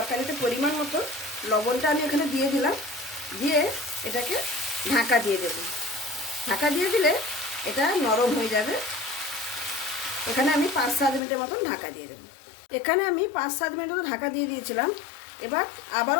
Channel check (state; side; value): drops out; right; at 11.2 s